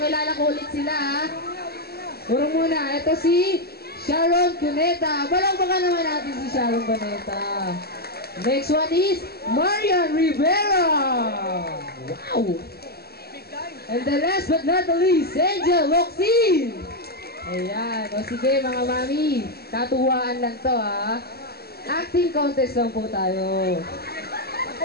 ko ulit sila ha. Puro muna, ito si Sharon Cuneta. Balakbakan naman natin si Sharon Cuneta. Next one is Marian Rivera. Wow! And the last but not the least, Angel Locsin. Ayan, o sige mga mami, katuwaan lang to ha. Acting contest lang po tayo.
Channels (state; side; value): late; right; 0.46 ms